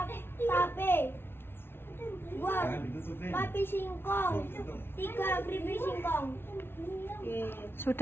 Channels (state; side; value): late; right; 0.11 ms